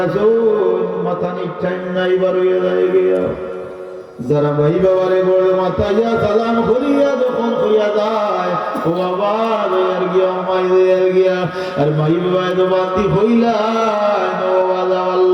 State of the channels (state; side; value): identical; both; correlation 1.00